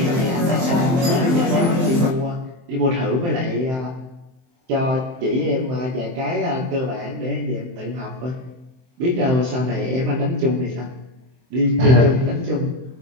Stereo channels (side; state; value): left; late; 23 ms